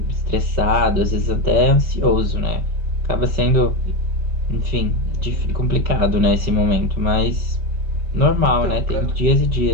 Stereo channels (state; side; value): late; left; 5.2 ms